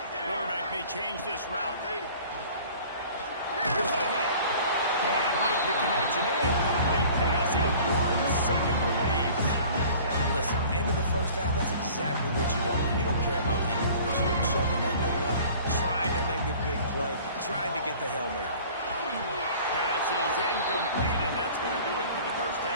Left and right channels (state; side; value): inverted; both; correlation -0.47